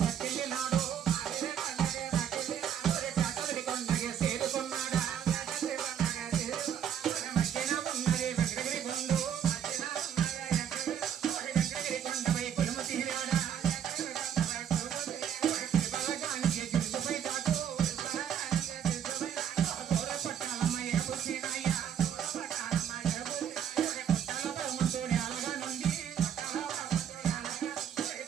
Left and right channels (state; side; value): quieter; left; 9.0 dB